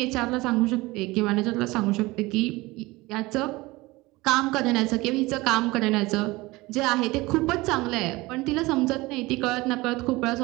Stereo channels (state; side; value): quieter; left; 21.3 dB